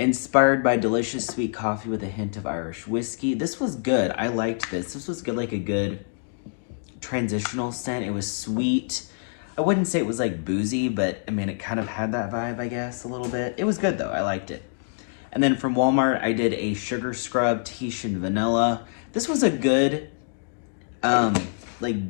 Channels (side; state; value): right; silent; digital silence